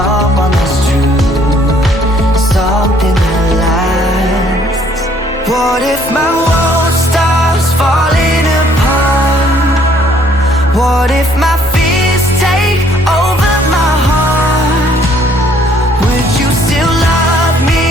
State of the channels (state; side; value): normal; both; correlation 0.63